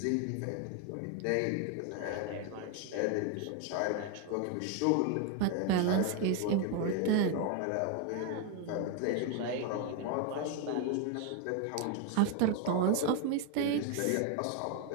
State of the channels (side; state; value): both; different; correlation 0.01